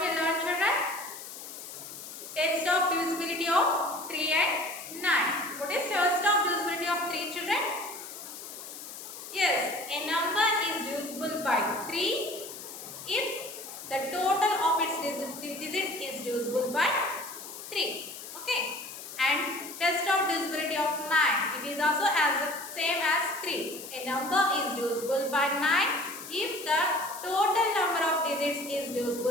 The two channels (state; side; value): noise; left; hiss, 12 dB below the sound